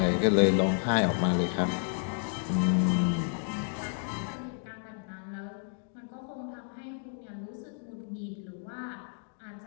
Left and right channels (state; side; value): silent; right; 57 dB below the other